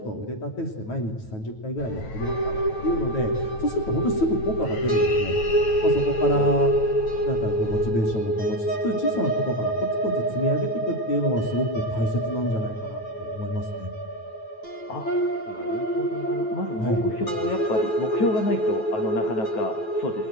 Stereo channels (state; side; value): late; right; 9.2 ms